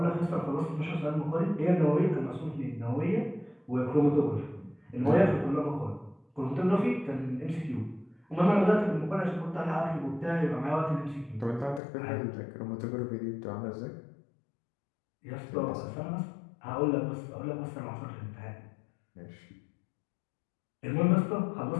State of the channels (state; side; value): drops out; right; at 11.8 s